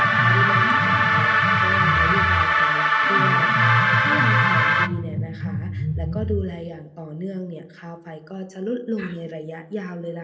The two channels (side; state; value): both; identical; correlation 1.00